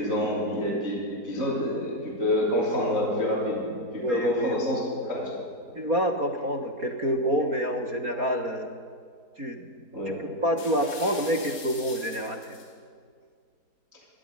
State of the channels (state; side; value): late; left; 3.8 ms